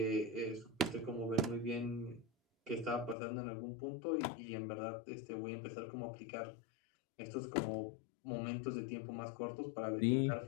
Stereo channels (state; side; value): drops out; right; at 3.2 s